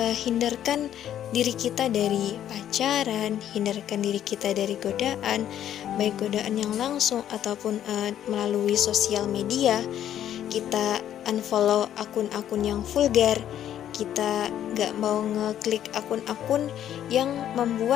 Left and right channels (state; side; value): quieter; right; 10.8 dB